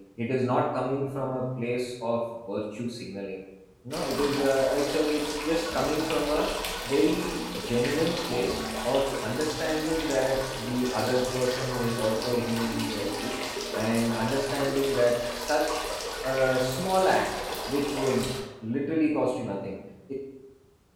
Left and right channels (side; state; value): both; identical; correlation 1.00